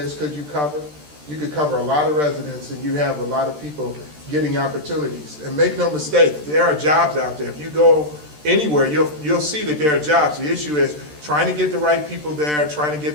could you cover? You could cover a lot of residents, and you have a lot of people getting opportunities. And make no mistake, there are jobs out there. If you go anywhere, you'll see that there are jobs. The issue is trying to get the right people there, trying to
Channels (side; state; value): left; late; 13 ms